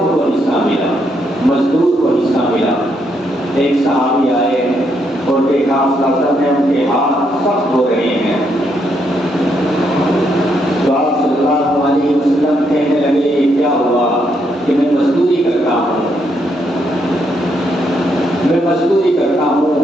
کو حصہ ملا، مزدور کو حصہ ملا۔ ایک صحابی آئے اور دیکھا آپ صلی اللہ علیہ وسلم نے ان کے ہاتھ سخت ہو رہے ہیں، تو آپ صلی اللہ علیہ وسلم کہنے لگے یہ کیا ہوا؟ کہ میں مزدوری کرتا ہوں، میں مزدوری کرتا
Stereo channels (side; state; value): both; normal; correlation 0.76